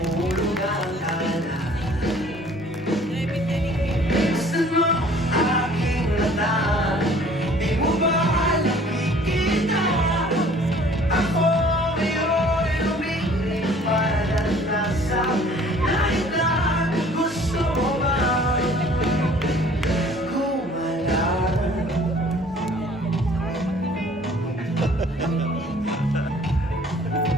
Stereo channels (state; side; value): normal; both; correlation 0.54